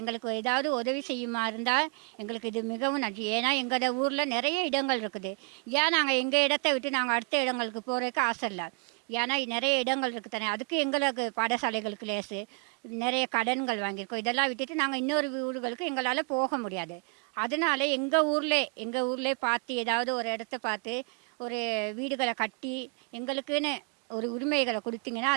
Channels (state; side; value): quieter; left; 32.8 dB